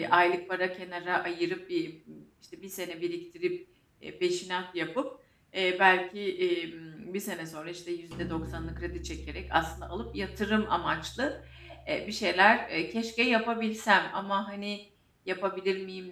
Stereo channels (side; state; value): both; identical; correlation 1.00